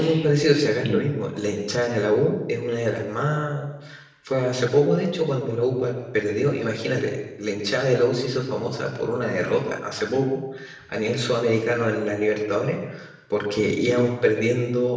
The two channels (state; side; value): identical; both; correlation 1.00